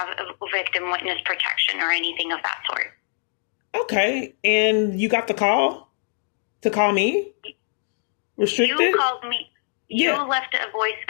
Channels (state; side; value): silent; right; digital silence